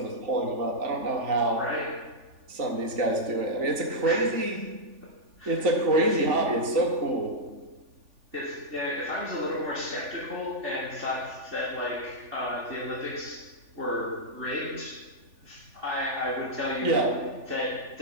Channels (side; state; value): left; late; 3.5 ms